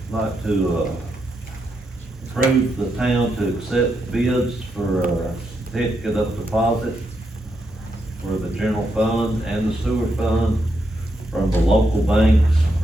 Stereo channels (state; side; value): normal; both; correlation 0.82